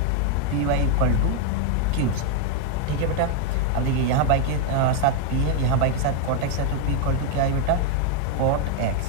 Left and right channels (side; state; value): both; different; correlation 0.01